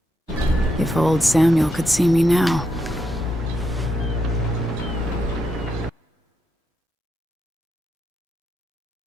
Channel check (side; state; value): both; normal; correlation 0.82